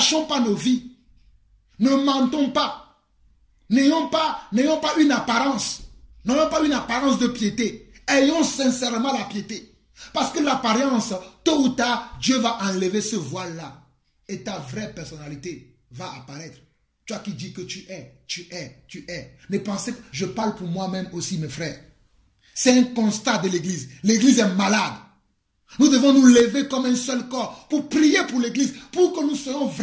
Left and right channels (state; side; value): identical; both; correlation 1.00